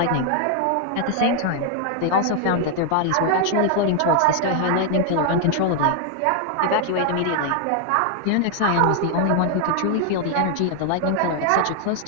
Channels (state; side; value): different; both; correlation 0.00